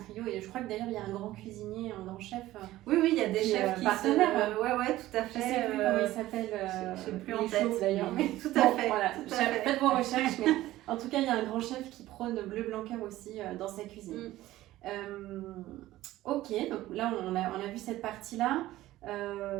Et je crois que d'ailleurs, il y a un grand cuisinier, un grand chef. Oui, il y a des chefs qui partenaires. Ouais, tout à fait. Je sais plus comment il s'appelle. Je sais plus en tête d'ailleurs. Mais tout à fait. Voilà, faites vos recherches. Mais en tout cas, il y a un grand chef qui prône bleu blanc cœur aussi dans sa cuisine. Ok, donc là, on a vu cette partie-là.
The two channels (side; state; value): left; quieter; 15.7 dB